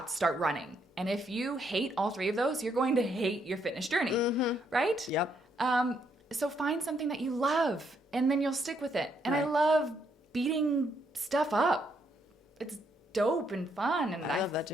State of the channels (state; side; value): normal; both; correlation 0.74